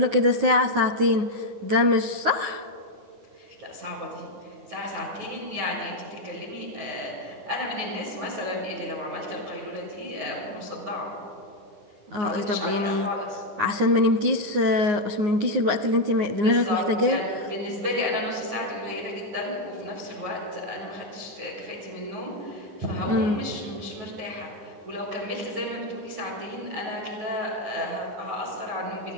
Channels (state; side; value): late; left; 9.6 ms